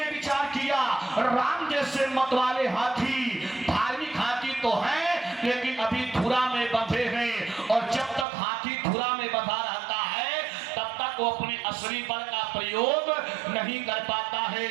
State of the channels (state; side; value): drops out; left; at 8.2 s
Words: विचार किया, राम जैसे मतवाले हाथी धार्मिक हाथी तो हैं, लेकिन अभी धुरा में बंधे हैं, और जब तक हाथी धुरा में बंधा रहता है तब तक वो अपने असली बल का प्रयोग नहीं कर पाता है।